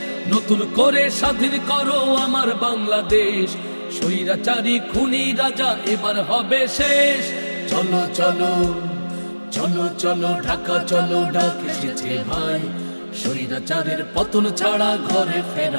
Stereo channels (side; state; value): both; inverted; correlation -1.00